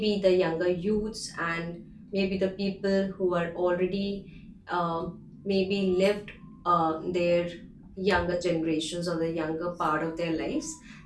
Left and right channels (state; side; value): identical; both; correlation 1.00